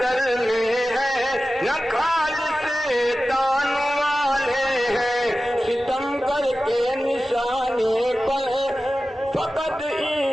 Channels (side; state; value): both; normal; correlation 0.95